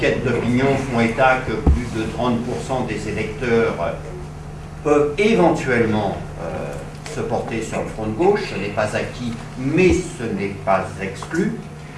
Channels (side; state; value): both; identical; correlation 1.00